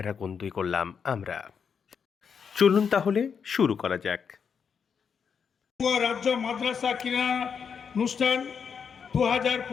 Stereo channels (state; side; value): quieter; right; 6.6 dB